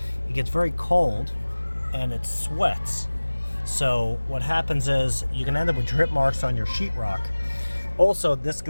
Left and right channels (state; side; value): inverted; both; correlation -1.00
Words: it gets very cold and it sweats. So what happens is you can end up with drip marks on your sheetrock. Also, this